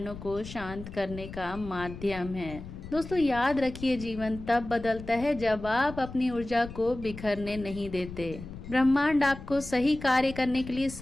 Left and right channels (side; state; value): left; noise; rumble, 12 dB below the sound